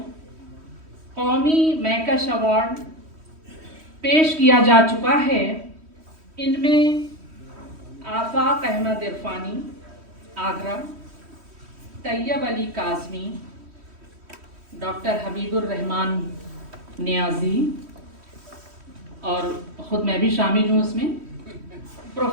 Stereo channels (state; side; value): late; left; 3.1 ms